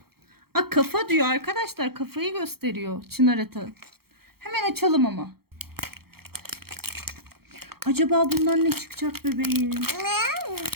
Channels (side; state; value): left; late; 0.95 ms